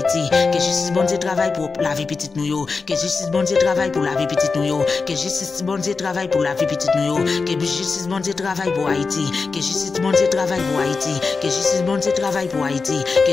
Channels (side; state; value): right; quieter; 4.5 dB